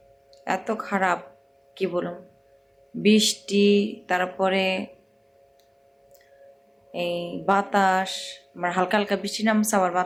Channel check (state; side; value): identical; both; correlation 1.00